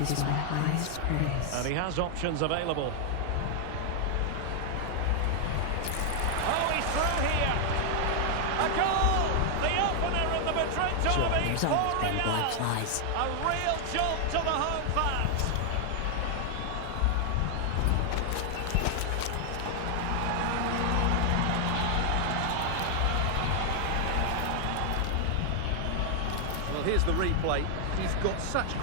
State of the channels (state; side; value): different; both; correlation 0.00